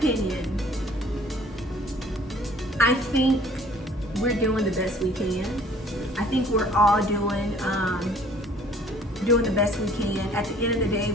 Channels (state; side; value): normal; both; correlation 0.54